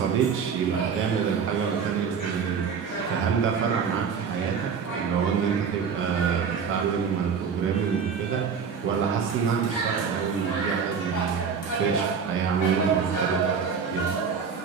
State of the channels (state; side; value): quieter; left; 6.3 dB